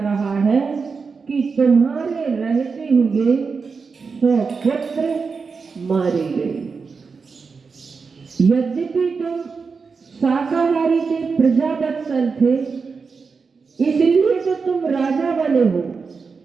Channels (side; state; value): left; quieter; 5.0 dB